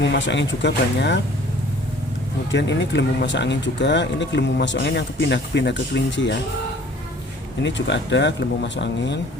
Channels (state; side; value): normal; both; correlation 0.52